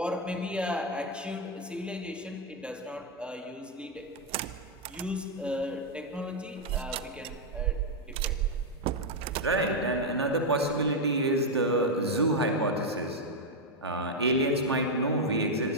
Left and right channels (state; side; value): normal; both; correlation 0.01